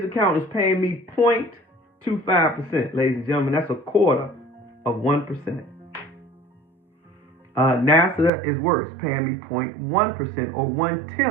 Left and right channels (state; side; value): drops out; left; at 8.3 s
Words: account is paying me 0.25%, ladies and gentlemen. That's a quarter of 1%. NASA is worse, paying me 0.1% or